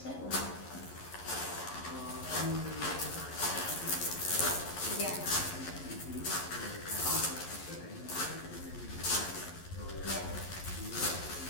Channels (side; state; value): right; late; 11 ms